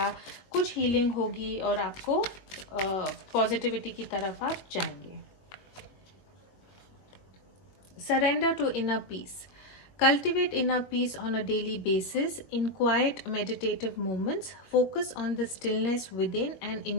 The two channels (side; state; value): right; late; 21 ms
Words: कुछ हीलिंग होगी और आपको पॉजिटिविटी की तरफ आप जाएंगे। Surrender to inner peace. Cultivate inner peace on a daily basis. In quiet meditative moments, focus on the stillness within and